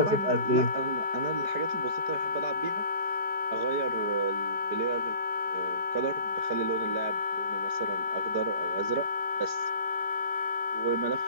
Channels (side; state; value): left; late; 4.9 ms